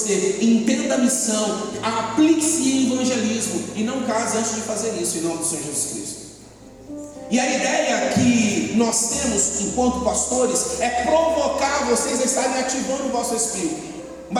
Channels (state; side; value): identical; both; correlation 1.00